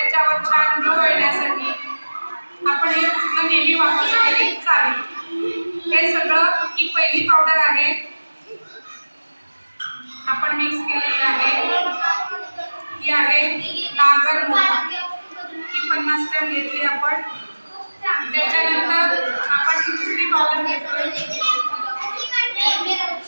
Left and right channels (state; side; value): inverted; both; correlation -1.00